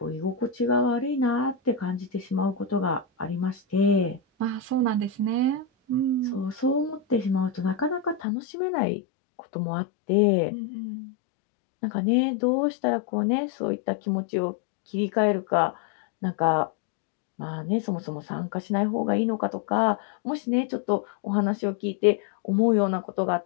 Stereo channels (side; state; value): right; drops out; at 8.2 s